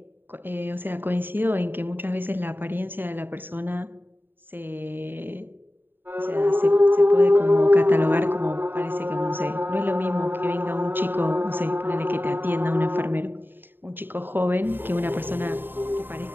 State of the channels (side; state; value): left; late; 0.095 ms